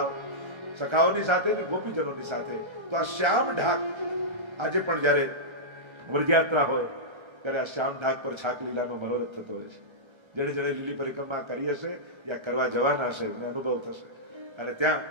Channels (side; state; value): left; late; 1.3 ms